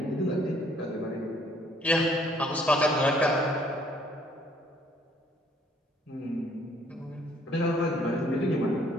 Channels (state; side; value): normal; both; correlation 0.62